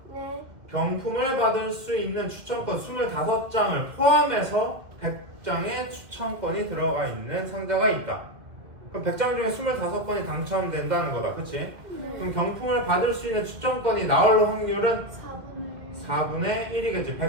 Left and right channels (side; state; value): left; late; 2.0 ms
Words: 네. 경품을 받을 수 있는 추천권 25장을 포함해서 100장의 추천권이 들어가 있는 상자가 있다. 그럼 100장 중에 25건이 당첨된다는 거다. 그치? 네. 그럼 경품을 받을 수 있는 추천권이 나올 확률은 4분의 4분의 1이겠지.